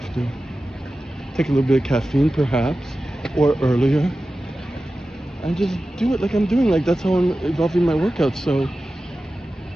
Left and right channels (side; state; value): both; normal; correlation 0.94